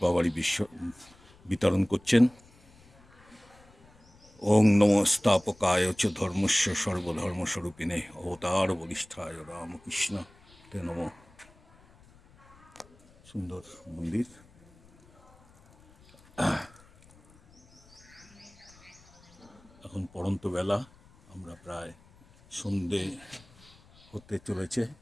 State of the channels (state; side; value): noise; left; rumble, 27 dB below the sound